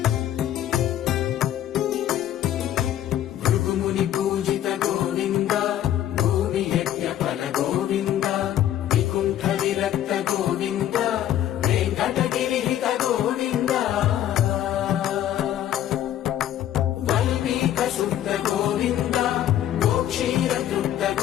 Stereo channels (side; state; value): right; quieter; 11.8 dB